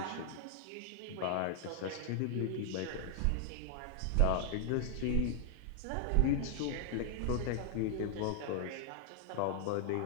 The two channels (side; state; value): both; different; correlation 0.00